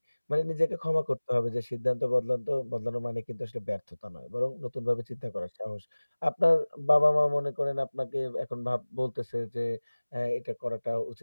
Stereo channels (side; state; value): both; inverted; correlation -1.00